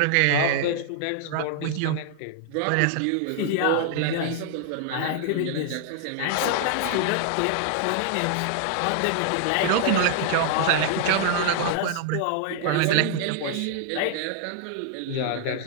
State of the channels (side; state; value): both; different; correlation 0.00